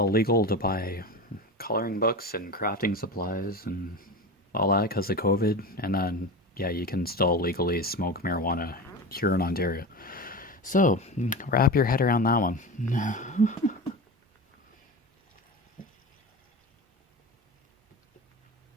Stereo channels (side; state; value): both; normal; correlation 0.26